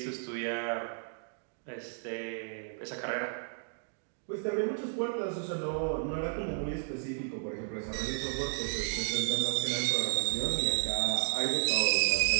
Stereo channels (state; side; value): silent; left; digital silence